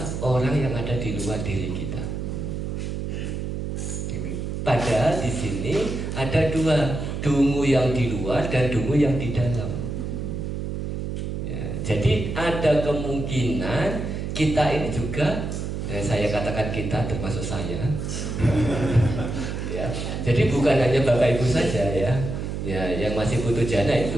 orang yang ada di luar diri kita. Padahal di sini ada dua, dungu yang di luar dan dungu yang di dalam. Ya, jadi ada kemungkinan kita ini juga, saya katakan kita termasuk saya. Ya, jadi bukan hanya Bapak Ibu saja ya, yang masih butuh jana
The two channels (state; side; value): noise; right; hum, 4 dB below the sound